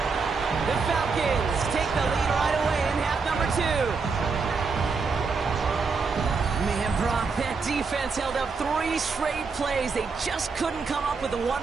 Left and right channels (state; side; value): quieter; left; 4.8 dB